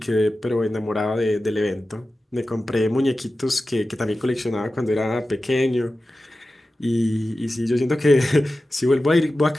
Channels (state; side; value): normal; both; correlation 0.94